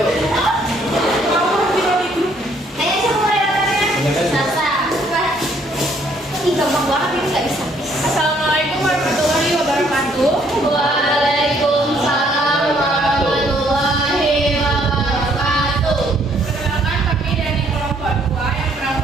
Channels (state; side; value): normal; both; correlation 0.66